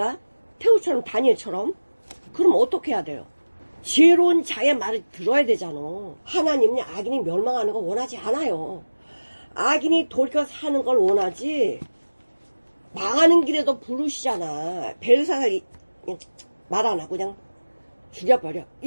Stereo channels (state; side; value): inverted; both; correlation -1.00